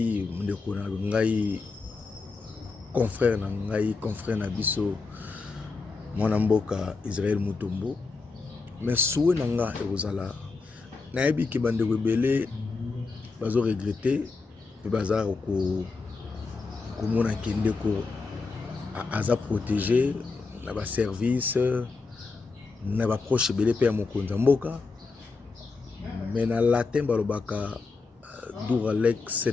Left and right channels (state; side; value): quieter; right; 4.2 dB